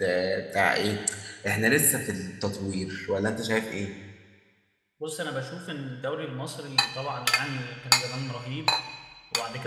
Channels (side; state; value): both; identical; correlation 1.00